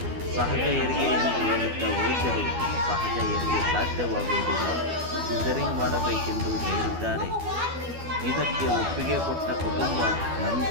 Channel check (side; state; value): left; late; 12 ms